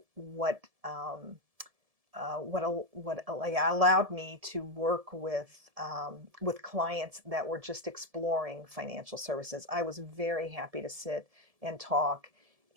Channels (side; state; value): left; late; 1.7 ms